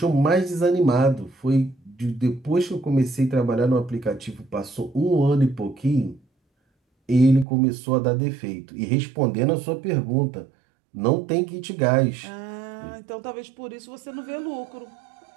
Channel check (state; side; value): drops out; left; at 7.5 s